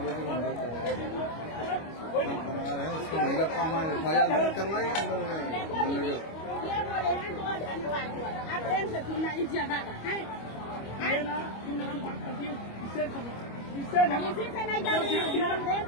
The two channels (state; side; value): late; right; 25 ms